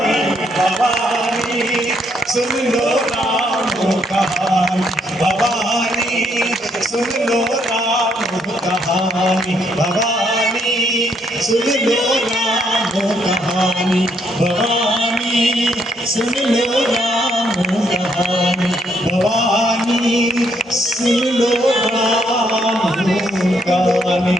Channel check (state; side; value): normal; both; correlation 0.72